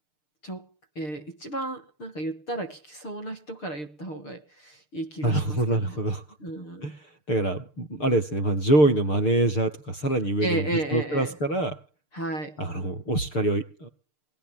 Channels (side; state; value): right; late; 6.7 ms